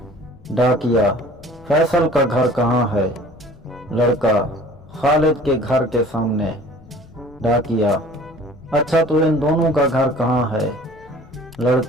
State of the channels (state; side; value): noise; left; rumble, 23 dB below the sound